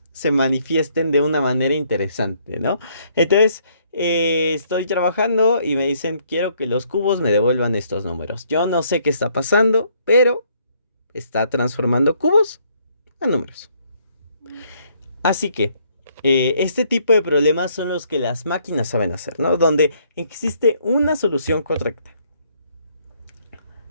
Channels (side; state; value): both; inverted; correlation -0.68